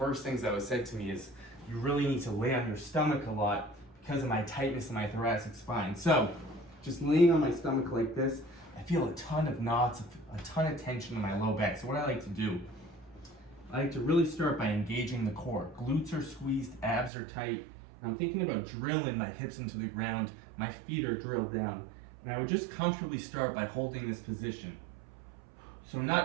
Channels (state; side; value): drops out; left; at 17.1 s